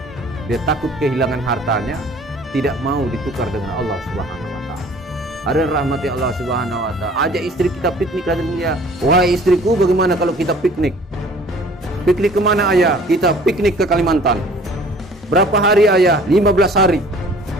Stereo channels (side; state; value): both; normal; correlation 0.51